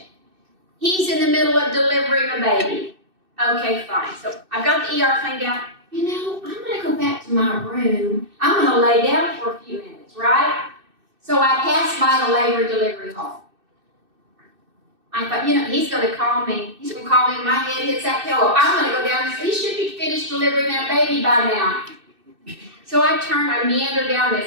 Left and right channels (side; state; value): left; late; 2.6 ms